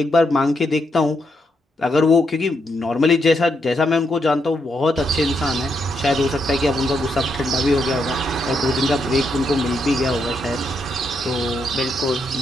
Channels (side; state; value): both; normal; correlation 0.79